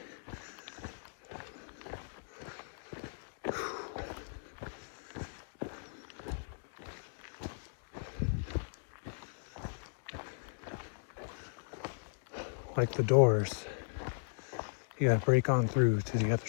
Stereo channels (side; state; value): right; silent; digital silence